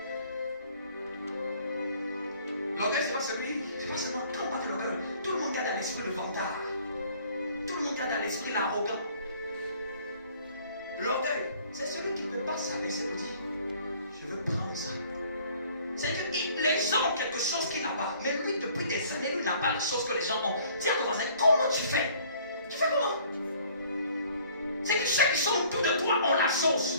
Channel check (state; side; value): inverted; both; correlation -0.56